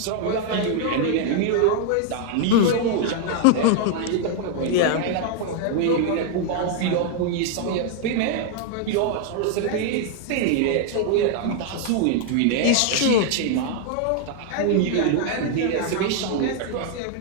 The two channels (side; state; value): both; different; correlation 0.00